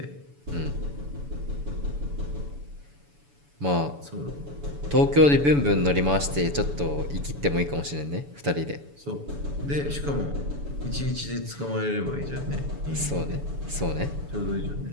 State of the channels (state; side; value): late; left; 7.0 ms